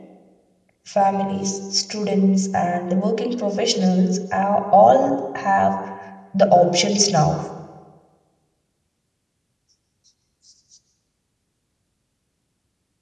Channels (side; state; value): both; identical; correlation 1.00